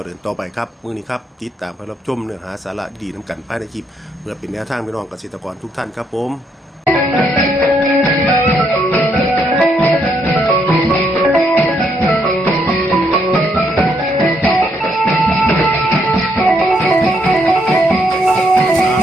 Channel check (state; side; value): normal; both; correlation 0.74